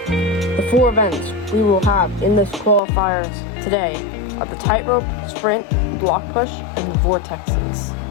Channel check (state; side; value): drops out; right; at 2.8 s